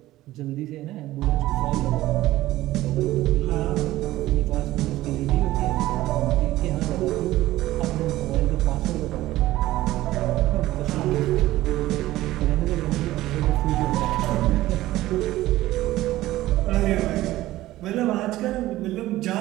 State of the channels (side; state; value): left; quieter; 16.0 dB